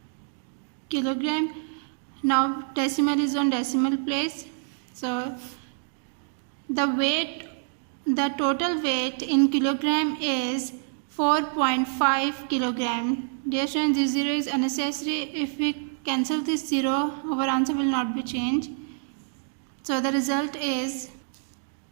Kilogram. Now decimal is on decimal place. So the total weight in kilogram is 4.5 kilogram. Dear students, this 0 is unnecessary. If we cancel this 0, our answer will not be changed. So the result is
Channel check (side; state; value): left; silent; digital silence